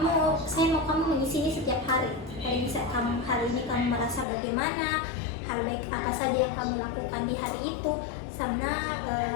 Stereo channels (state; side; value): drops out; right; at 4.2 s